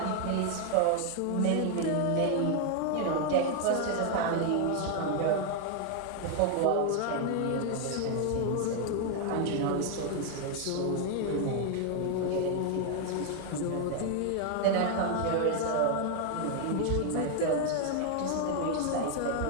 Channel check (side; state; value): both; different; correlation 0.00